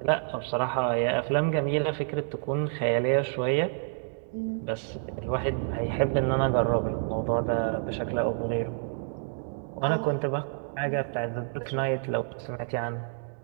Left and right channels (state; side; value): silent; left; digital silence